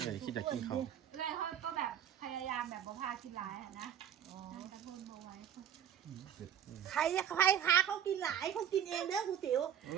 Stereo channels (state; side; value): quieter; left; 9.5 dB